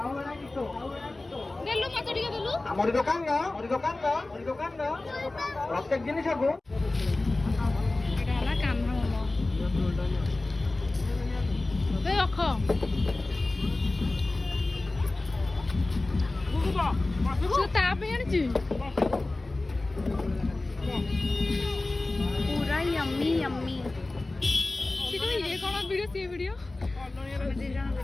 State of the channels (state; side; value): quieter; right; 3.0 dB